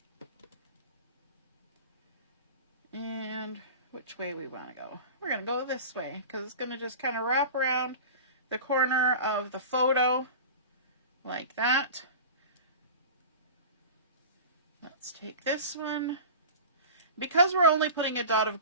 And which way we want to go? We're going to go this way because it's going to just kind of wrap around the corner of the photo like that. Let's take this one. Because we're only putting a dot of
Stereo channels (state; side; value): inverted; both; correlation -0.35